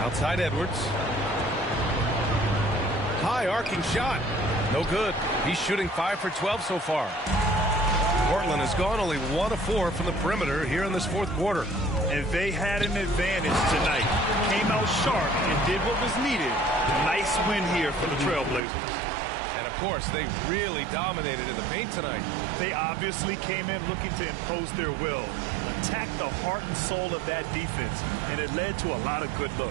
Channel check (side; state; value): left; drops out; at 18.6 s